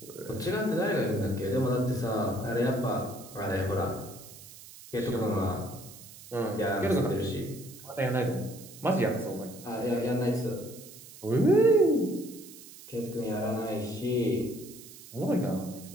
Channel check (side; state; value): right; noise; hiss, 17 dB below the sound